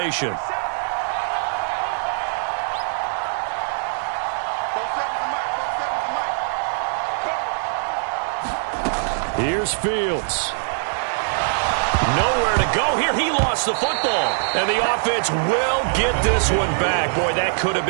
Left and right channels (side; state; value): left; silent; digital silence